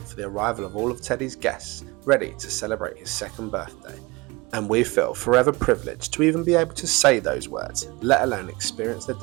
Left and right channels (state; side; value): quieter; left; 24.0 dB